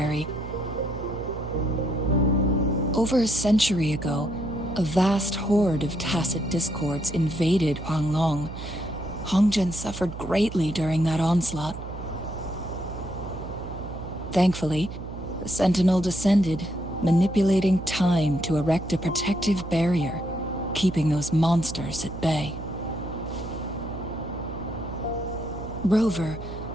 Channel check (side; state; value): right; noise; hum, 10 dB below the sound